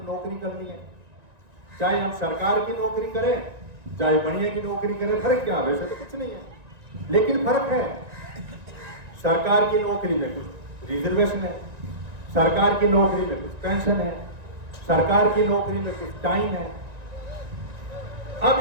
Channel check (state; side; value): late; left; 1.9 ms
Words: नौकरी करनी है, चाहे हम सरकार की नौकरी करें चाहे बढ़िया की नौकरी करें, फर्क क्या है? वैसे तो कुछ नहीं है, लेकिन फर्क है। सरकार की नौकरी में कुछ रिजर्वेशन है, सरकार की नौकरी में कुछ पेंशन है, सरकार की नौकरी में कुछ टाइम है।